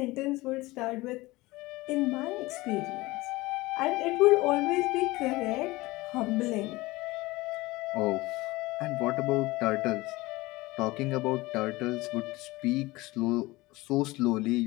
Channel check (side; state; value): right; quieter; 20.7 dB